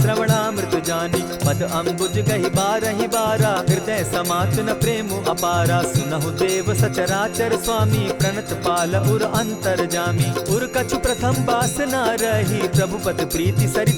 श्रवणामृत जानी। पद अम्बुज गहि बारहि बारा, हृदय समात न प्रेम अपारा। सुनहु देव सचराचर स्वामी, प्रणत पाल उर अंतर जामी। उर कछु प्रथम बास न रही, प्रभु पद प्रीति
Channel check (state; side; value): identical; both; correlation 1.00